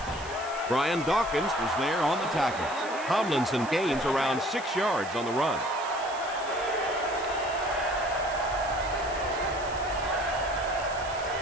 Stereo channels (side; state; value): right; noise; hiss, 16 dB below the sound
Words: Brian Dawkins was there on the tackle. Tomlinson gains around 6 yards on the run.